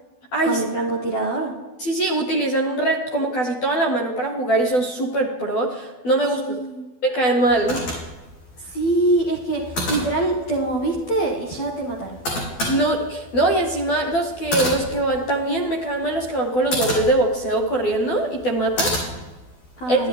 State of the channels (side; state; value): right; late; 12 ms